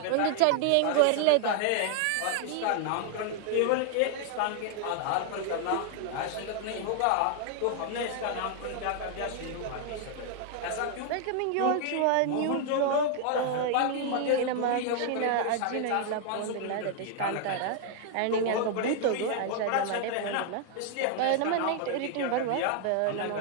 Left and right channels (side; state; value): both; different; correlation 0.00